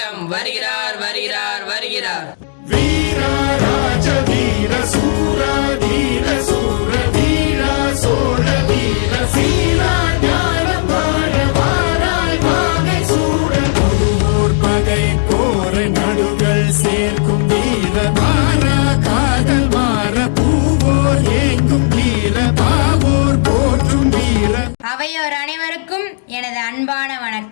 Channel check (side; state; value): right; silent; digital silence